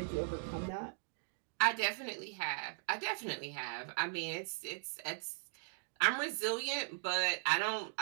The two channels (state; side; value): silent; left; digital silence